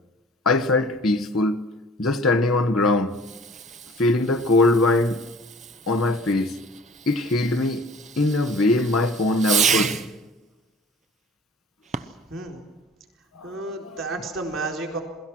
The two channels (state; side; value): normal; both; correlation 0.48